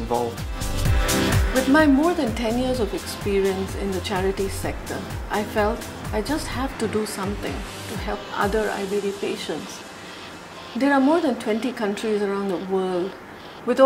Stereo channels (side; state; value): both; identical; correlation 1.00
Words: With my more than 10 years of experience in the charity sector, I felt I just have to do something to help other IBD patients. There are more than 20 countries around the world with